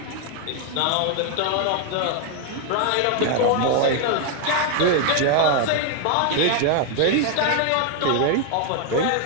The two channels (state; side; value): different; both; correlation 0.00